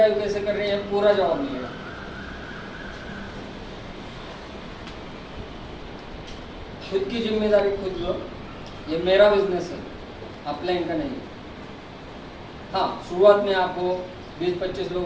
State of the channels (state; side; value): identical; both; correlation 1.00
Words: कैसे कर रहे हैं पूरा जवाब मिलेगा. खुद की जिम्मेदारी खुद लो. ये मेरा बिजनेस है, अपलाइन का नहीं. हाँ, शुरुआत में आपको 20-25